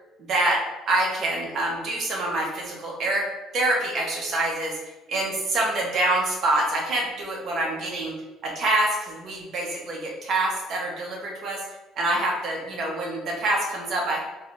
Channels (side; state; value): both; normal; correlation 0.56